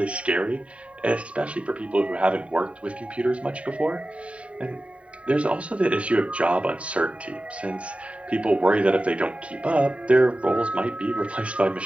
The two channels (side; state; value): left; late; 0.064 ms